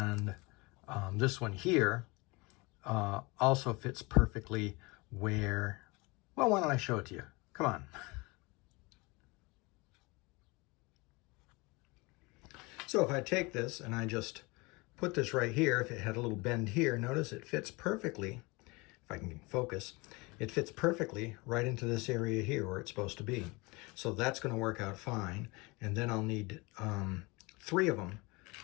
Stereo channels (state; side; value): quieter; right; 25.5 dB